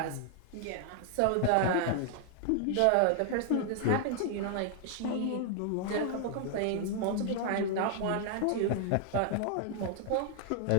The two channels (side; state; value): both; different; correlation 0.00